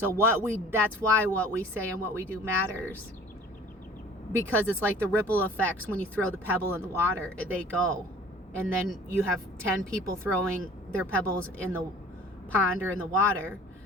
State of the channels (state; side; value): normal; both; correlation 0.48